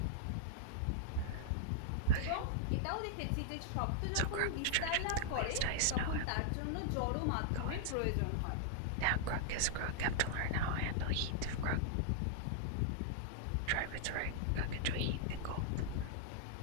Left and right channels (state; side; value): different; both; correlation -0.01